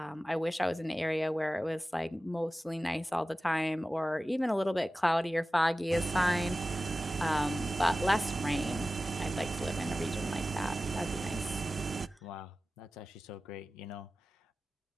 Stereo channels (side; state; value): both; normal; correlation 0.95